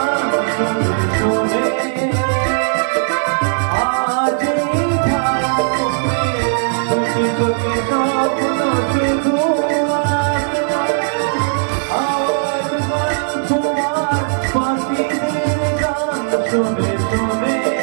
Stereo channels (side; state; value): left; silent; digital silence